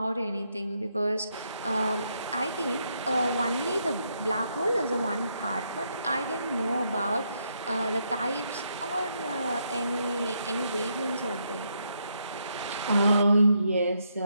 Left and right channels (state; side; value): inverted; both; correlation -0.77